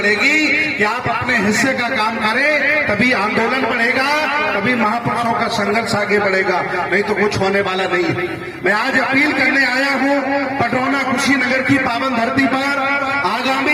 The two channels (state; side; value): identical; both; correlation 1.00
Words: कि आप अपने हिस्से का काम करें, तभी आंदोलन बढ़ेगा, तभी महापुरुषों का संघर्ष आगे बढ़ेगा, नहीं तो कुछ होने वाला नहीं। मैं आज अपील करने आया हूं पटरौना कुशीनगर की पावन धरती पर